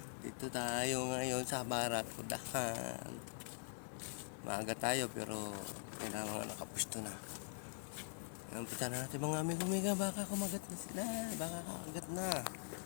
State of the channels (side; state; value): right; silent; digital silence